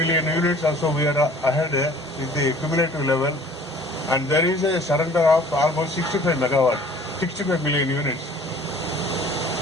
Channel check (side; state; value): both; normal; correlation 0.50